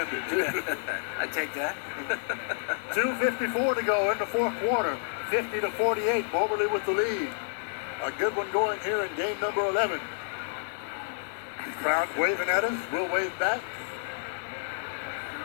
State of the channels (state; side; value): silent; right; digital silence